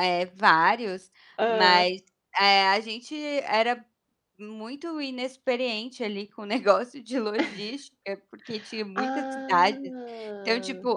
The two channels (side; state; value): both; identical; correlation 1.00